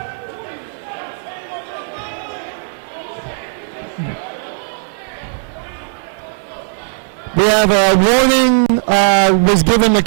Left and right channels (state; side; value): silent; left; 69 dB below the other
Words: We have a warning was given to